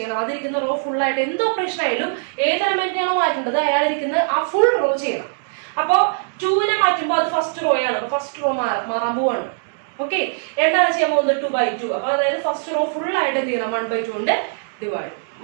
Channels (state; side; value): silent; left; digital silence